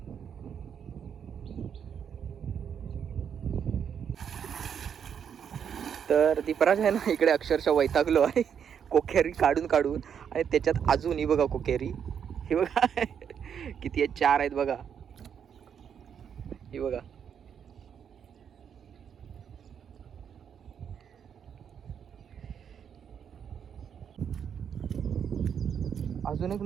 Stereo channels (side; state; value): left; quieter; 7.9 dB